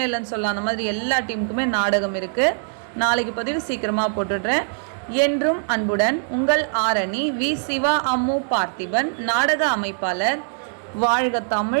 இல்லைன்னு சொல்லலாம். அந்த மாதிரி எல்லா டீமுக்குமே நாடகம் இருக்குது. நாளைக்கு பதிவு சீக்கிரமாக போட்டுடுறேன். என்றும் அன்புடன் உங்கள் ஆரணி வி. சிவா அம்மு பார்த்திபன் நாடக அமைப்பாளர். வாழ்க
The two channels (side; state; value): left; silent; digital silence